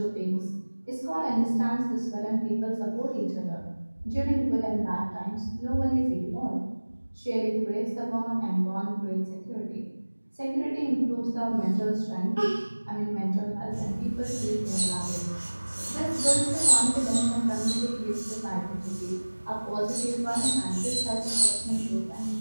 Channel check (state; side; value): inverted; both; correlation -1.00